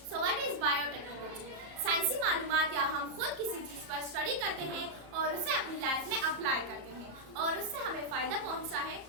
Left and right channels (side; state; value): left; late; 34 ms